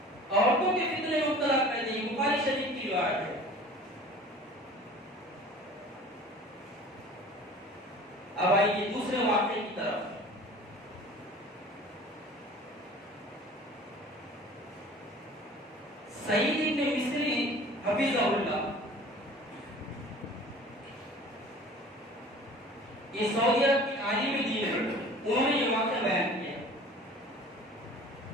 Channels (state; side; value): normal; both; correlation 0.45